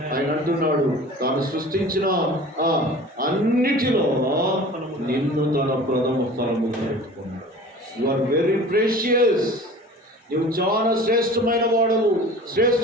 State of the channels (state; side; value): normal; both; correlation 0.42